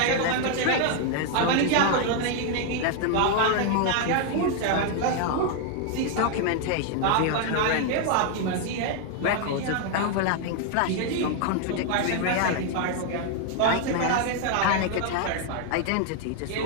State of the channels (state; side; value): different; both; correlation 0.00